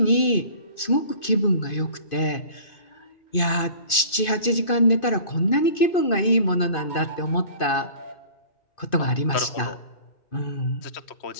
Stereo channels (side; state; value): right; late; 2.5 ms